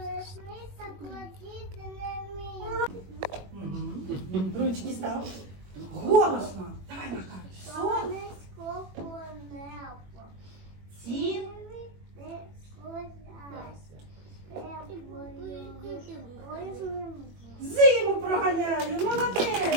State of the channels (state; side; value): late; left; 21 ms